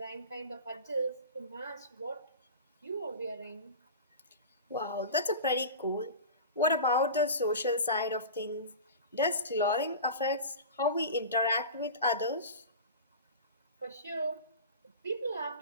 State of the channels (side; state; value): both; inverted; correlation -0.32